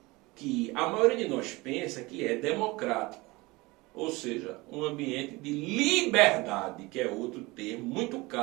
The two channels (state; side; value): quieter; left; 22.7 dB